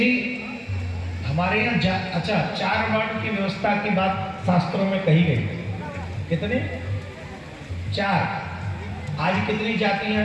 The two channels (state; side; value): identical; both; correlation 1.00